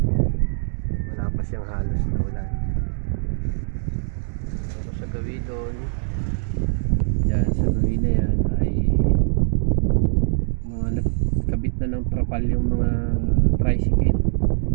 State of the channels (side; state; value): left; silent; digital silence